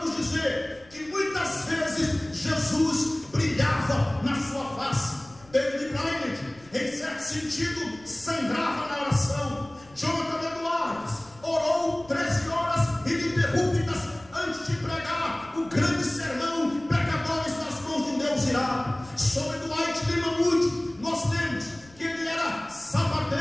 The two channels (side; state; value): left; noise; rumble, 25 dB below the sound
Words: dizer que muitas vezes Jesus brilhava na sua face. David Brainerd, em certo sentido, sangrava na oração. Jonathan Edwards orou 13 horas ininterruptas antes de pregar o grande sermão Pecadores nas mãos de um Deus irado. Sobre Dwight Lima Moody, nós lemos que ele era